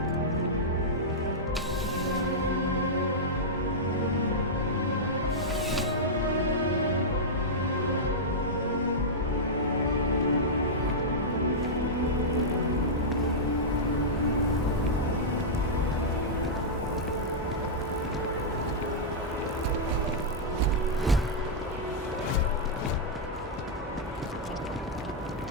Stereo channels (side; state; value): both; normal; correlation -0.10